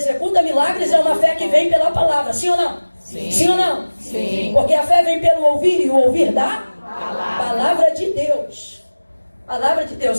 milagres é uma fé que vem pela palavra, sim ou não? Sim. Sim ou não? Sim. Porque a fé vem pelo ouvir, e o ouvir da palavra de Deus. Palavra de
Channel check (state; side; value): inverted; both; correlation -1.00